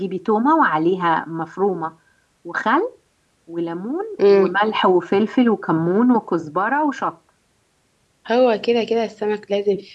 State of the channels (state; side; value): identical; both; correlation 1.00